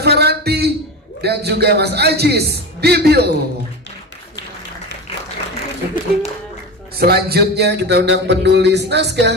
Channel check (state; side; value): normal; both; correlation 0.25